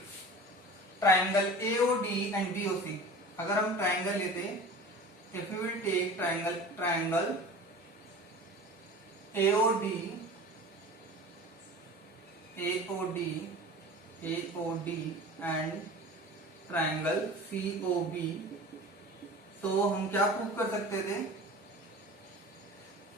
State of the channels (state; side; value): normal; both; correlation 0.38